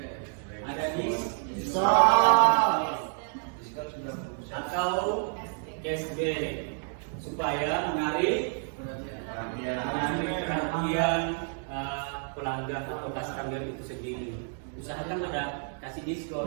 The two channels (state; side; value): silent; left; 58 dB below the other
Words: diskon atau cashback supaya menarik perhatian pelanggan atau customer itu sendiri. Usahakan ada kasih